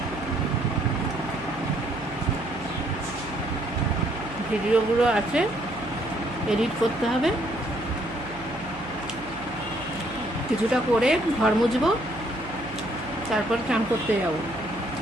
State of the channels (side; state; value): right; noise; hum, 16 dB below the sound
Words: ভিডিওগুলো আছে, এডিট করতে হবে। কিছুটা করে ঘর মুছবো, তারপর চান করতে যাব।